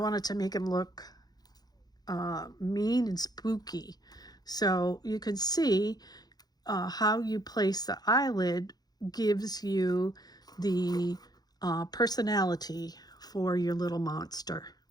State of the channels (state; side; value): late; right; 0.19 ms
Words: to make him look mean and spooky. So you can see how you place the eyelid gives you the personality for your little monster.